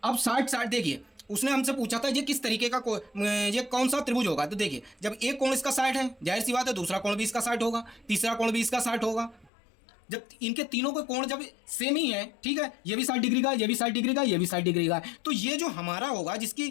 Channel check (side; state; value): right; drops out; at 9.5 s